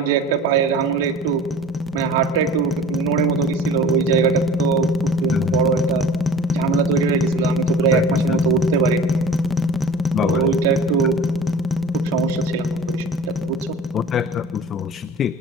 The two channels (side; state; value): both; normal; correlation 0.42